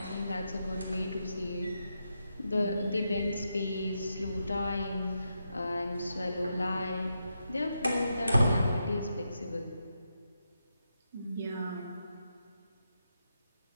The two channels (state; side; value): inverted; both; correlation -0.85